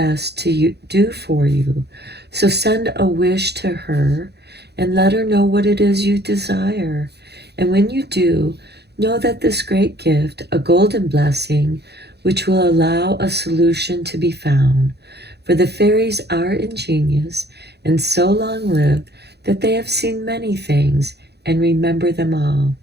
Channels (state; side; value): late; left; 0.48 ms